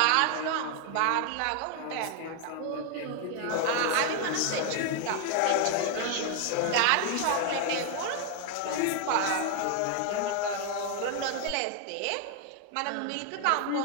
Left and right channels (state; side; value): different; both; correlation 0.00